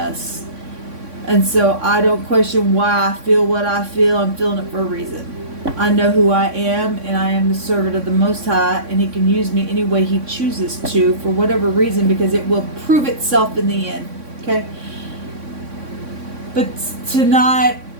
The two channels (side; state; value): left; late; 3.6 ms